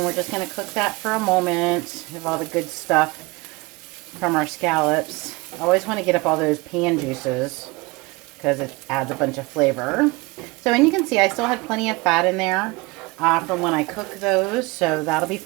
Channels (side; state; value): left; quieter; 24.2 dB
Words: we're just going to cook that for a moment. Have all the good stuff from our scallops. I always want to get up all those pan juices because it adds a bunch of flavor. So, and you can see I still had plenty of fat in there from when I cook those, so that'll be